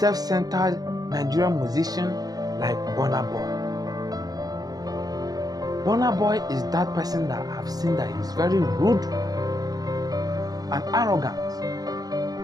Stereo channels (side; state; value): left; late; 0.18 ms